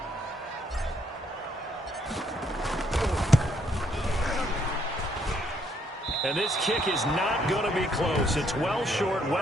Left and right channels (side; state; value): both; normal; correlation 0.70